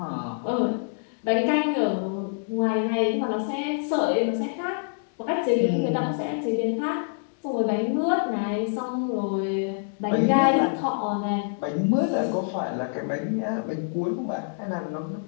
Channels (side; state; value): right; silent; digital silence